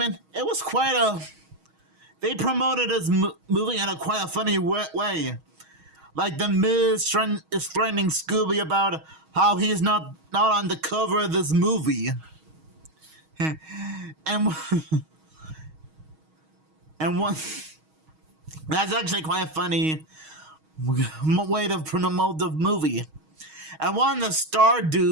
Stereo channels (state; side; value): late; left; 6.3 ms